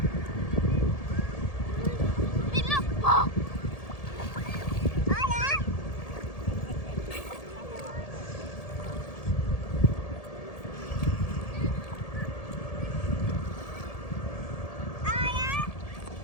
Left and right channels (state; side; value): late; right; 1.7 ms